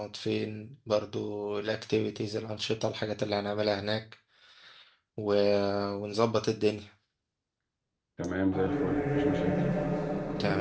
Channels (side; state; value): both; identical; correlation 1.00